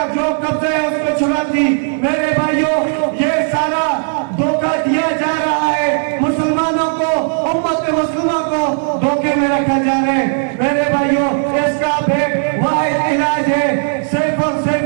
जो कब्जा है उसको छुड़ाती। मेरे भाइयों, ये सारा धोखा दिया जा रहा है, मुसलमानों को, उम्मत मुस्लिमा को धोखे में रखा जा रहा है। मेरे भाइयों, इसका एक वाहिद इलाज है, सिर्फ और सिर्फ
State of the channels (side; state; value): left; silent; digital silence